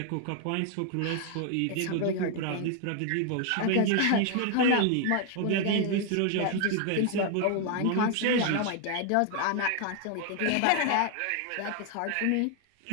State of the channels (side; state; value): both; different; correlation 0.00